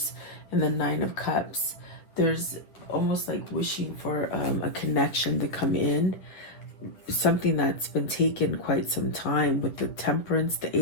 and the Nine of Cups. There's almost like wishing for a connection to come in. something that's been taken quite some time, with the Temperance, the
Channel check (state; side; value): late; right; 9.9 ms